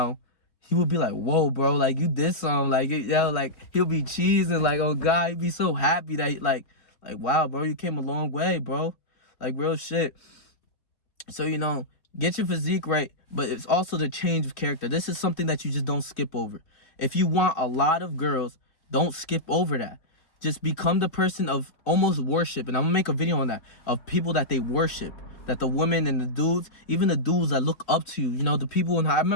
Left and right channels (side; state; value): right; late; 3.7 ms